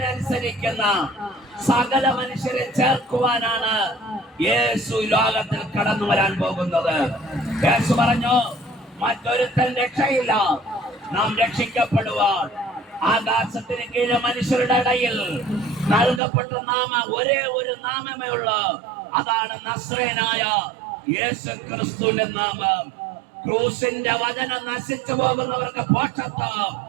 അനുസരിക്കുന്ന സകല മനുഷ്യരെ ചേർക്കുവാനാണ് യേശു ലോകത്തിൽ കടന്നു വരാൻ പോകുന്നത്. യേശു പറഞ്ഞു, മറ്റൊരുത്തൻ രക്ഷയില്ല, നാം രക്ഷിക്കപ്പെടുവാൻ ആകാശത്തിന് കീഴെ മനുഷ്യരുടെ ഇടയിൽ നൽകപ്പെട്ട ഒരേ ഒരു നാമമേ ഉള്ളൂ, അതാണ് നസ്രയനായ യേശു ക്രിസ്തുവിന്റെ നാമം. ക്രൂസിന്റെ വചനം നശിച്ചു പോകുന്നവർക്ക് പോഷത്വം,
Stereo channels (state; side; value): drops out; left; at 16.2 s